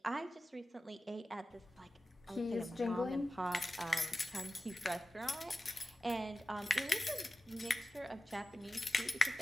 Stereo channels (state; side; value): normal; both; correlation 0.94